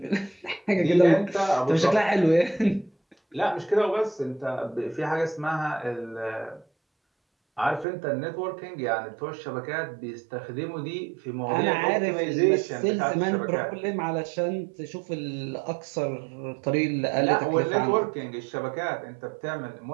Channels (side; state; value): left; drops out; at 7.9 s